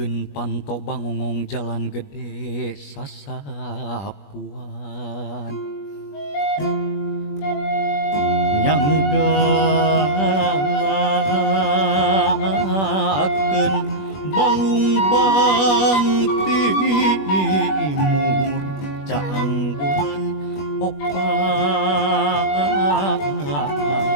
Pikeun panto bangongong jalan gede sasapuan nyanggakeun balung bang timur caang bulan opat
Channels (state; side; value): late; right; 21 ms